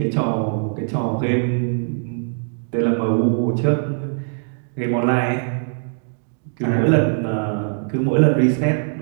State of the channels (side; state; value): left; silent; 65 dB below the other